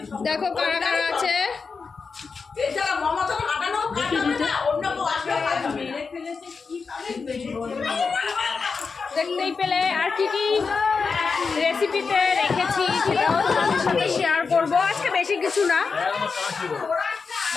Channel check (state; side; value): quieter; right; 5.0 dB